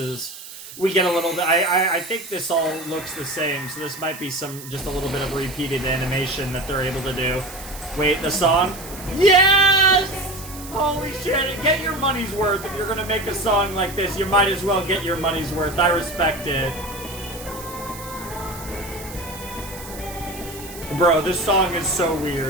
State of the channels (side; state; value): right; noise; hiss, 14 dB below the sound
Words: We get a little bit... I think this all looks the same, so this might be just a little bit of repeated animation that they're able to do. Wait, the song? Yes! Holy shit, get your money's worth. If you're gonna make a song like this, you might as well get your money's worth. I respect it. Bro, this song is so